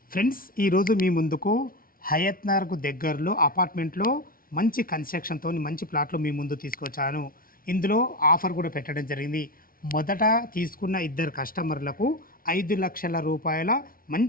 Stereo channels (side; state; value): right; late; 0.42 ms